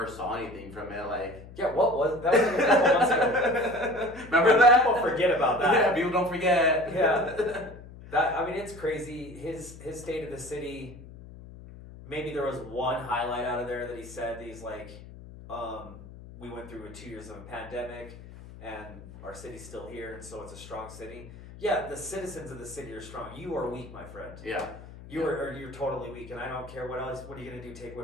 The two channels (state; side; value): noise; left; hum, 16 dB below the sound